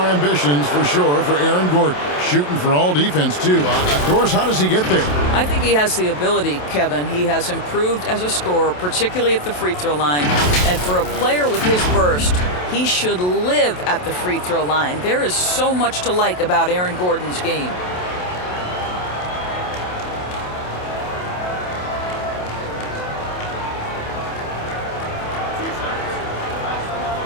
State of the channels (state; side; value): late; right; 27 ms